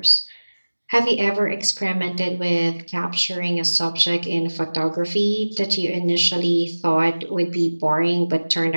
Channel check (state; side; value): inverted; both; correlation -1.00